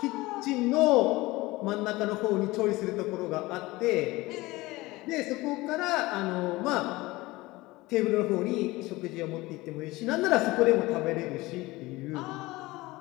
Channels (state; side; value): quieter; right; 20.4 dB